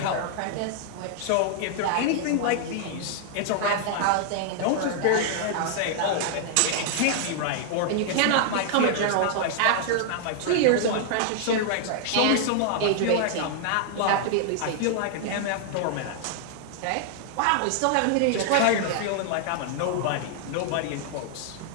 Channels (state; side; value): different; both; correlation 0.00